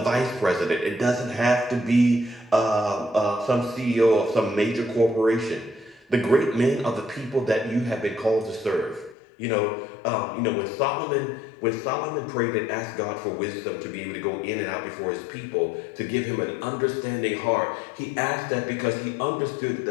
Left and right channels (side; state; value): right; drops out; at 9.2 s